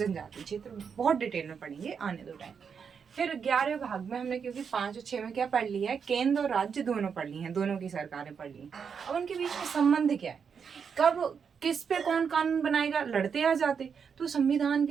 क्षेत्र। बहुत डिटेल में पढ़ेंगे आने दो टाइम। फिर 11वें भाग में हमने, क्योंकि 5 और 6 में क्या पढ़ लिया है, केंद्र और राज्य दोनों पढ़ ली हैं, दोनों की सरकारें पढ़ ली हैं। अब उनके बीच में संबंध क्या है, कब किस पे कौन कानून बनाएगा, लड़ते आ जाते। तो संविधान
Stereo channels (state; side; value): quieter; left; 6.6 dB